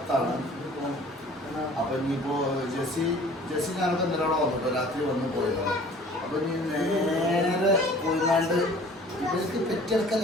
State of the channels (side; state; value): both; normal; correlation 0.49